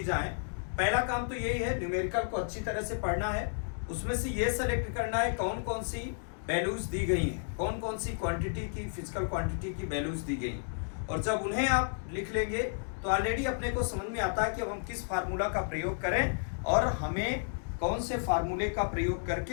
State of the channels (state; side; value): silent; right; digital silence